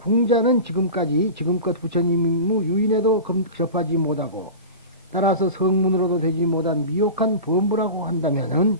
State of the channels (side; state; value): both; inverted; correlation -0.31